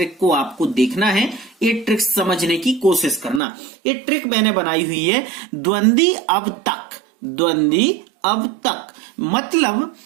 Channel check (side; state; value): left; drops out; at 3.4 s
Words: को आपको देखना है, ये ट्रिक समझने की कोशिश करना। ये ट्रिक मैंने बनाई हुई है द्वंद्वी अब तक। द्वंद्वी अब तक मतलब